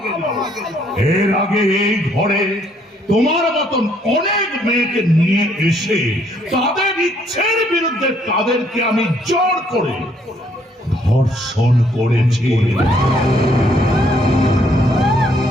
এর আগে এই ঘরে তোমার মতন অনেক মেয়েকে নিয়ে এসে তাদের ইচ্ছের বিরুদ্ধে তাদেরকে আমি জোর করে ধর্ষণ করেছি।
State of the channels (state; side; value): normal; both; correlation 0.67